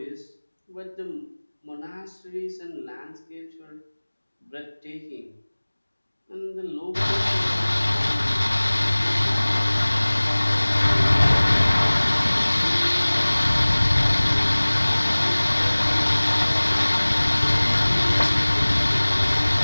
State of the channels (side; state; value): both; inverted; correlation -1.00